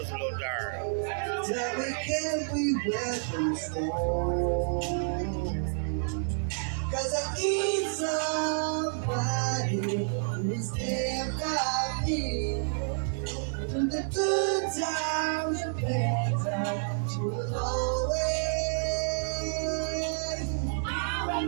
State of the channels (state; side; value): silent; left; digital silence